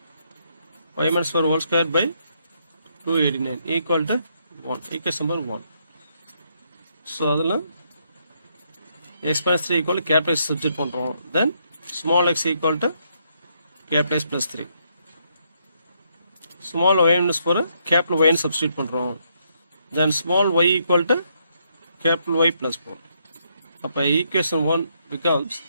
y minus 4 whole square by 289 equal to 1. Equation number 1. So adala x minus 3 equal to capital X substitute பண்றோம். Then small x equal to capital X plus 3. Small y minus 4 capital Y substitute பண்றோம். Then small y equal to capital Y plus 4. அப்ப equation 1 becomes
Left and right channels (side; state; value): both; inverted; correlation -0.74